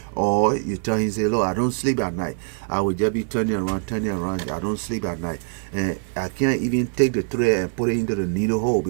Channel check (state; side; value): silent; left; digital silence